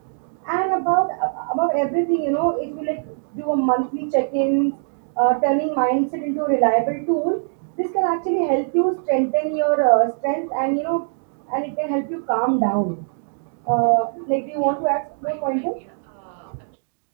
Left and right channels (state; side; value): silent; left; digital silence